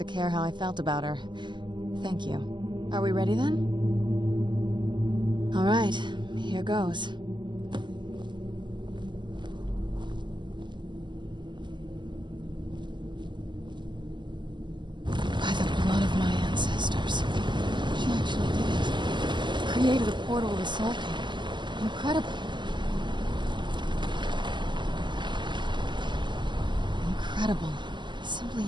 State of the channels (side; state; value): left; late; 0.22 ms